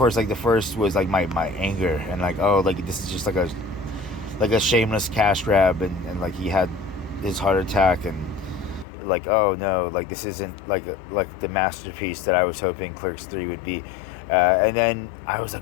like, the first was like my anger, and like, oh, like, this is just like a shameless cash grab, and like he had his heart attack, and like, oh no, like, this isn't like the masterpiece that I was hoping Clerks 3 would be. And then I was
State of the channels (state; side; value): drops out; right; at 8.8 s